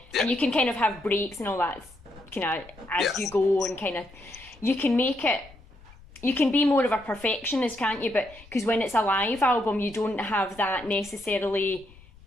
And you can kind of have breaks and all that kind of as you go, and kind of you can make it. You can be more of a perfectionist, can't you? But because when it's a live album, you don't have that necessarily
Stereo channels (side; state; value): left; noise; rumble, 23 dB below the sound